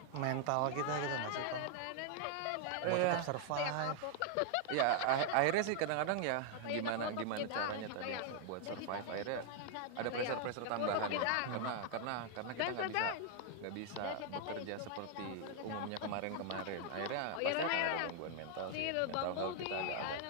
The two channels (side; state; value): both; different; correlation 0.00